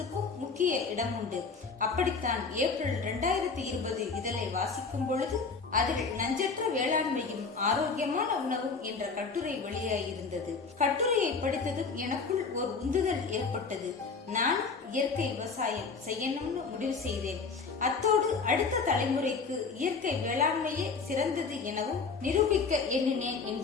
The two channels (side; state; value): right; quieter; 4.8 dB